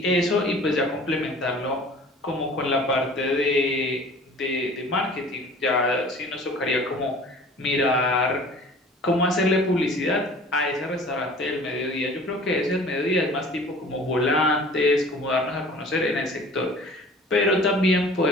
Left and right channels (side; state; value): both; normal; correlation 0.46